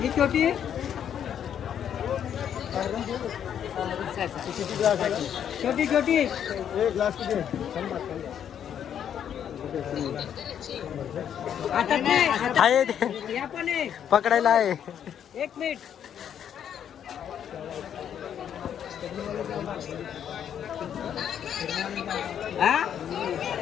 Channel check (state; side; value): quieter; right; 9.1 dB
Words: ही छोटी छोटी छोटी पकडायला आहे. 1 मिनिट.